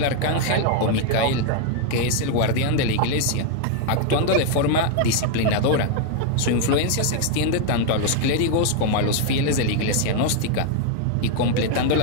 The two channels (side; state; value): both; different; correlation 0.00